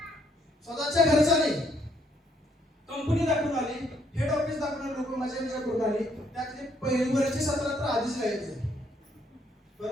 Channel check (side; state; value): both; normal; correlation 0.69